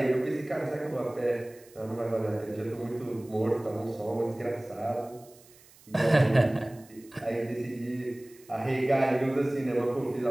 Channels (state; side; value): noise; right; hiss, 25 dB below the sound